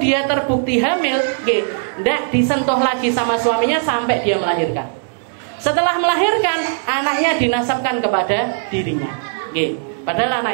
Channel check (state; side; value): silent; left; 67 dB below the other